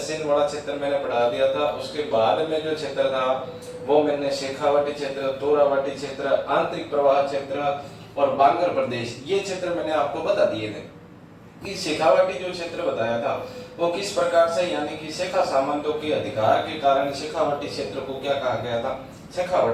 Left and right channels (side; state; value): both; identical; correlation 1.00